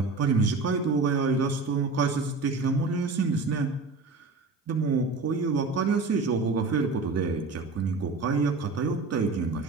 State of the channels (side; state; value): left; quieter; 3.9 dB